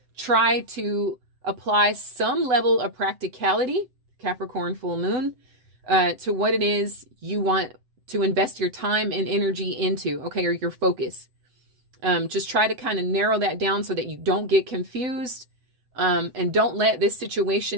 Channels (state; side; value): late; left; 7.9 ms